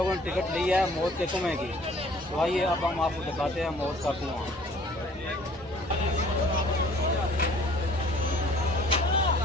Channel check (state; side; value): normal; both; correlation 0.54